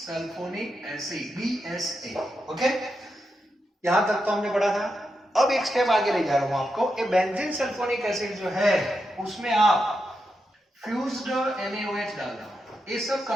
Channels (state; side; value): normal; both; correlation 0.86